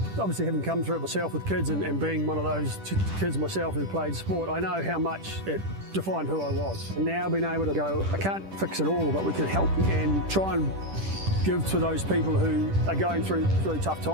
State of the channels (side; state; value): left; late; 10 ms